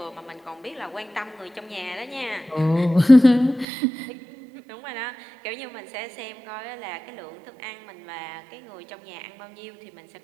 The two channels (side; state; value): left; drops out; at 3.7 s